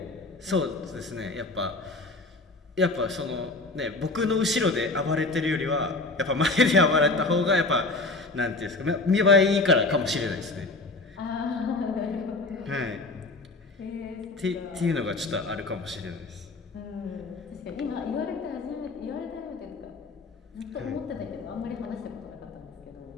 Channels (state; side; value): quieter; right; 3.3 dB